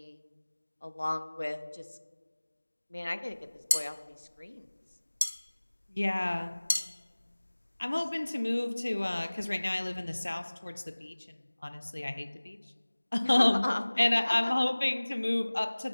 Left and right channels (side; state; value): both; inverted; correlation -1.00